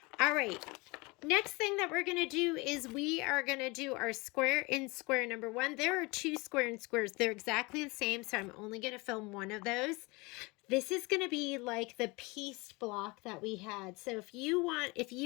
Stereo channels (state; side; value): quieter; right; 25.6 dB